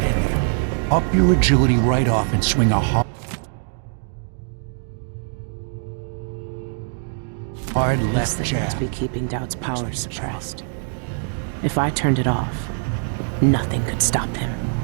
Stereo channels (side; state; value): left; silent; digital silence